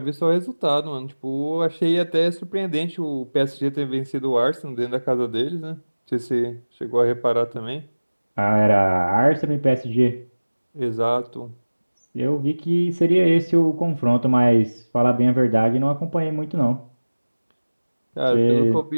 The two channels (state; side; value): inverted; both; correlation -1.00